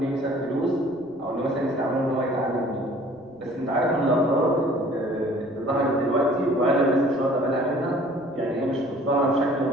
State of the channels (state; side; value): noise; right; rumble, 29 dB below the sound